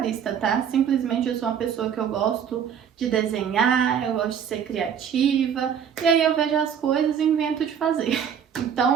tá? Simplesmente eu sou uma pessoa que eu gosto de desenhar, eu gosto de ser criativa, e aí eu vejo as coisas e invento de fazer.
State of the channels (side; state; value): left; quieter; 8.1 dB